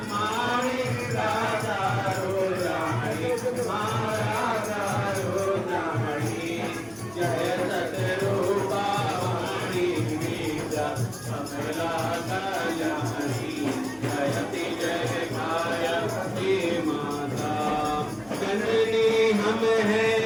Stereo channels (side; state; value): left; noise; hum, 27 dB below the sound